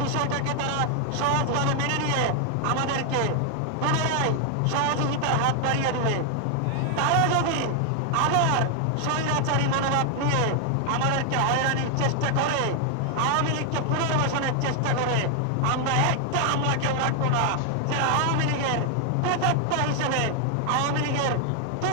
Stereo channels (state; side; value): different; both; correlation 0.00